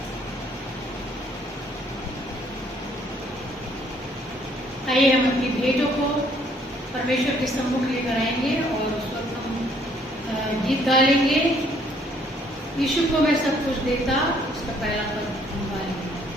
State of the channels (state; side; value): normal; both; correlation 0.64